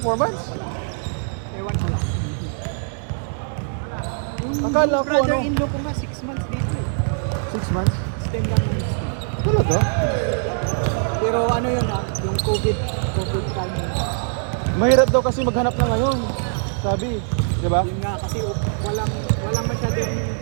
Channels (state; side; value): silent; left; 61 dB below the other